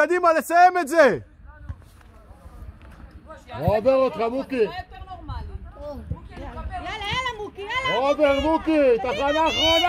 לסיים את זה! עובר אותך, מוקי! יאללה, מוקי, יאללה! עובר, מוקי! תחנה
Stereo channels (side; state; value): both; identical; correlation 1.00